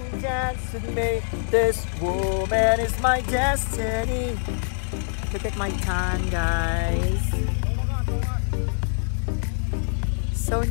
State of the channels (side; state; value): right; silent; digital silence